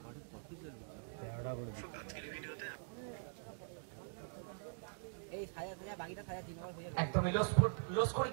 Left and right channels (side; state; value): left; silent; digital silence